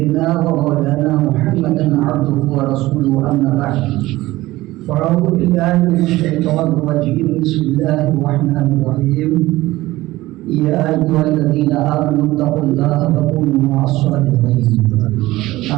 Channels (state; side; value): quieter; left; 17.8 dB